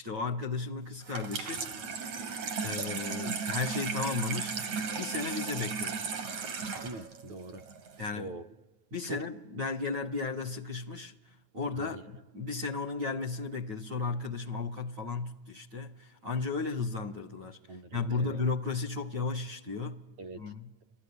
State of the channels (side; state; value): left; late; 9.2 ms